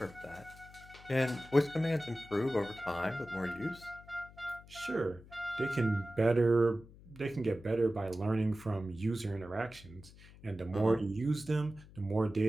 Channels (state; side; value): noise; left; hum, 21 dB below the sound